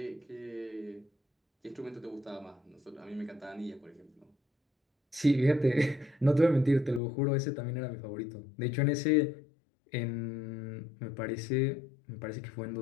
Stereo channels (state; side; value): drops out; right; at 7.0 s